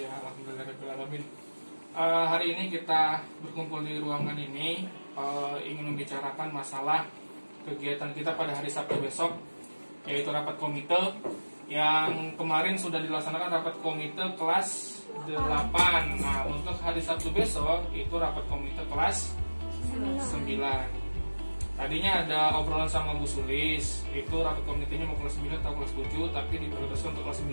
alhamdulillahirrahmanirrahim. Hari ini kita berkumpul di ruangan ini ingin membicarakan masalah kegiatan kita pada hari Sabtu besok, yaitu rapat komite yang kemarin sudah dilaksanakan rapat komite kelas 8. Nah, untuk hari Sabtu besok itu rapat komite kelas 9. Tadinya ada obrolan sama Bu Sulis, itu rapat komitenya mau kelas 9 atau kelas 7, tapi diprioritaskan untuk kelas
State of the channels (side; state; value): both; inverted; correlation -1.00